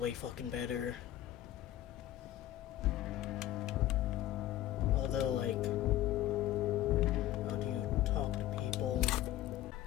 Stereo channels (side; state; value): right; quieter; 13.8 dB